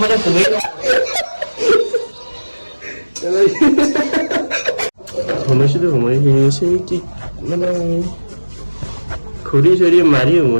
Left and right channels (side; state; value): both; inverted; correlation -1.00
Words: সোমাইছিলোঁ সোমাই সি কি মানে ঘূৰি চৰি মাৰি